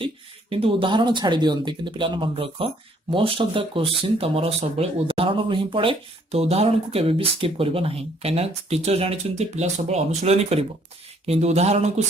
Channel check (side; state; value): both; normal; correlation 0.64